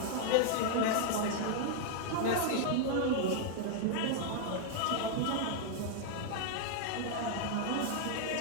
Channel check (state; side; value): different; both; correlation 0.00